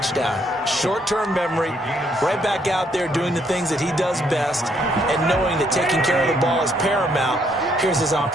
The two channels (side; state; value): both; normal; correlation 0.70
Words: Short-term memory, right back out there doing the things that he does best, and knowing that taking care of the ball is paramount. Here's his